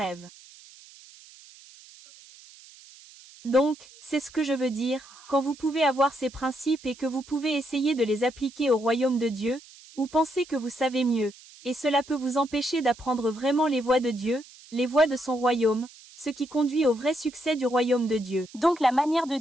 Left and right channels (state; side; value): noise; right; hiss, 22 dB below the sound